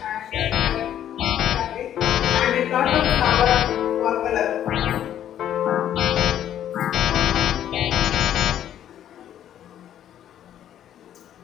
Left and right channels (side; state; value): right; quieter; 10.8 dB